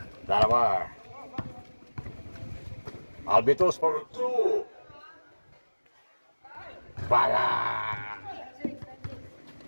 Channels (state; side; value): inverted; both; correlation -1.00